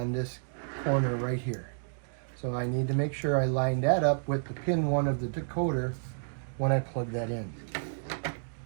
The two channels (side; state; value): left; silent; digital silence